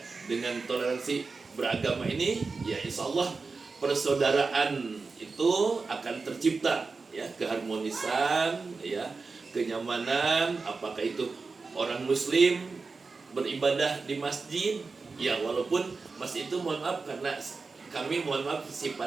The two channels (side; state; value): left; quieter; 4.3 dB